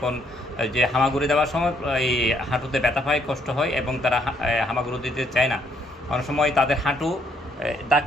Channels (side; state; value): both; normal; correlation 0.69